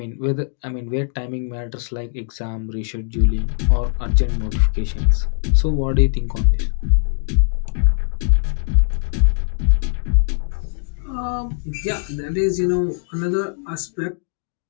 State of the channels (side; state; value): right; silent; 65 dB below the other